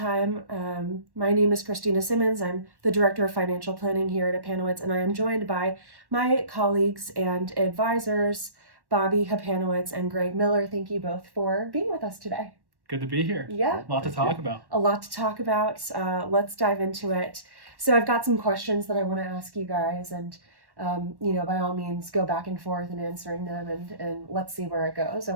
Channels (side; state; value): left; late; 1.1 ms